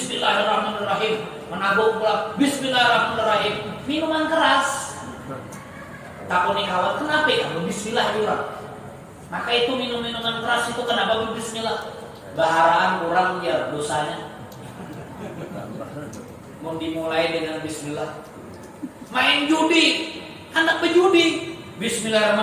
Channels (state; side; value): identical; both; correlation 1.00